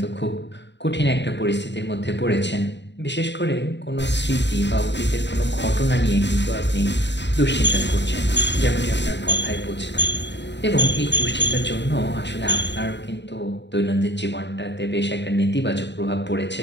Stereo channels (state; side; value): late; right; 0.51 ms